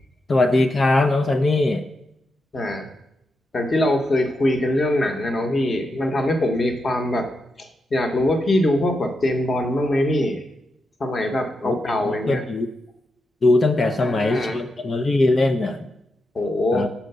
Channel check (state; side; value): normal; both; correlation 0.86